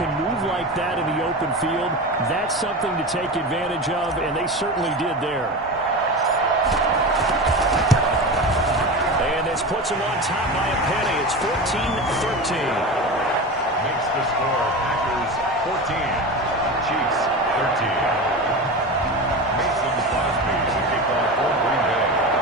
can move like that in the open field, that's something to take advantage of, and they certainly did there. And this puts them on top by a penny. It's 14-13. Makes the score Packers 14, Chiefs 13. Mason Crosby to kick off for Green Bay.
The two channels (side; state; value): both; normal; correlation 0.26